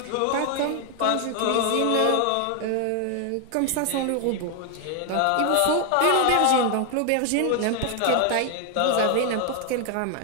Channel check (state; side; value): different; both; correlation 0.00